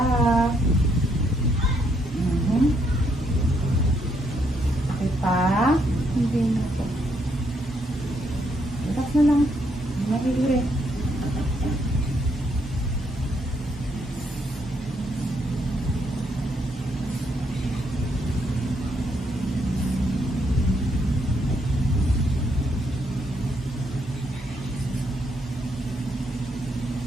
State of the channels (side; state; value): both; normal; correlation 0.74